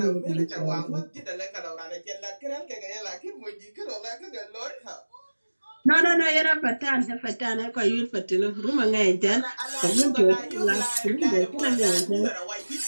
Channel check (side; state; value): both; inverted; correlation -1.00